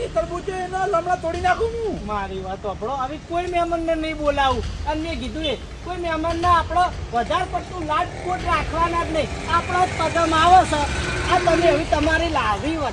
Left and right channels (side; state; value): both; identical; correlation 1.00